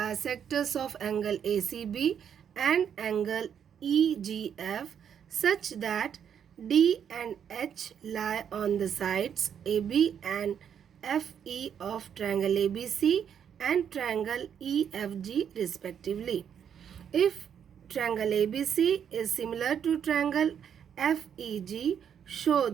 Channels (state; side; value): quieter; left; 8.3 dB